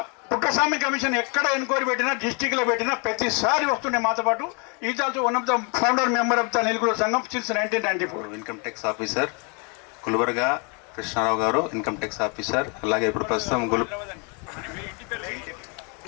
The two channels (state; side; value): quieter; right; 34.8 dB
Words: పుట్టస్వామి కమిషన్ ఎక్కడ ఎంక్వైరీ పెట్టినా, డిస్టిక్లో పెట్టినా ప్రతిసారి వస్తుండే మాతో పాటు. Is also one of the founder member of the నిలుగుల సంఘం since 1994. Income tax officer Gulbarga Krishnarao garu income tax officer, అలాగే ఇప్పుడు ప్రస్తుతం